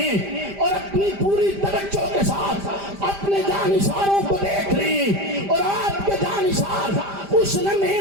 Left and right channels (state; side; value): late; left; 5.0 ms